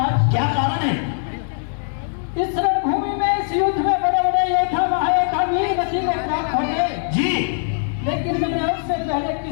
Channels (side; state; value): right; silent; digital silence